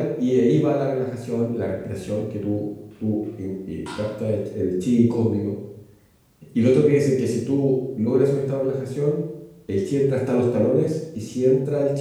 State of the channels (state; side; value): identical; both; correlation 1.00